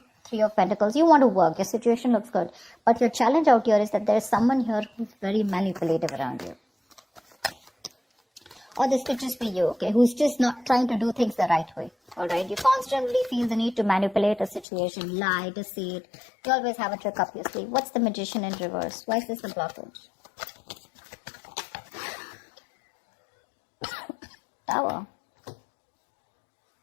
3 of Pentacles, you want to work, your situation looks good. But your challenge out here is that there is someone here who's very manipulative around you. Or this could just be you, okay, who's just not trying to do things the right way. Alright, you constantly feel the need to manipulate a situation, lie, deceit. You always have a trick up your sleeve. What's the Magician in reverse? Why is this a blockage? Tower.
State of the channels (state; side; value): drops out; right; at 14.7 s